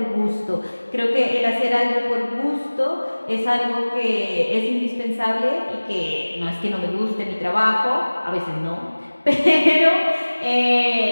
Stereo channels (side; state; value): both; inverted; correlation -1.00